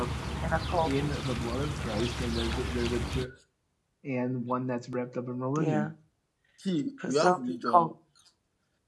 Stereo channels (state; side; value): identical; both; correlation 1.00